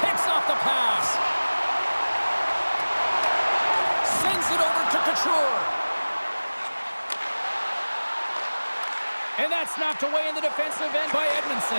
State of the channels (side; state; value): both; inverted; correlation -1.00